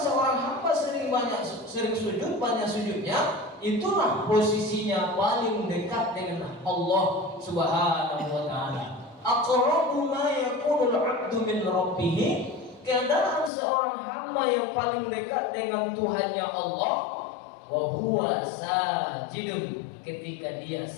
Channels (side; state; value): right; drops out; at 13.5 s